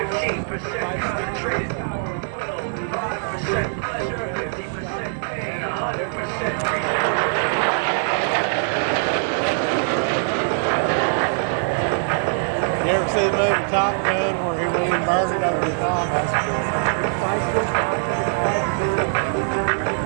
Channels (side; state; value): left; silent; 64 dB below the other